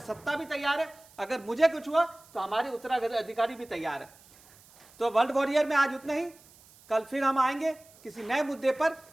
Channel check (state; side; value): noise; right; hiss, 26 dB below the sound